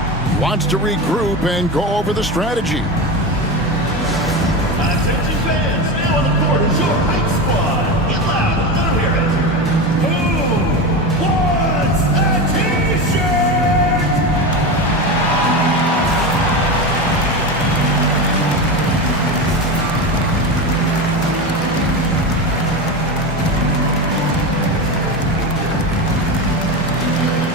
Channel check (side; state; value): both; normal; correlation 0.21